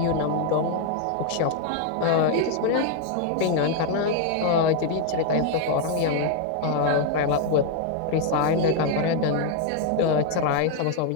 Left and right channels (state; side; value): different; both; correlation 0.00